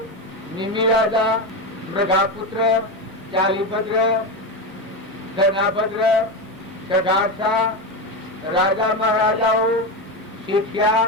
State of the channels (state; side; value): normal; both; correlation 0.16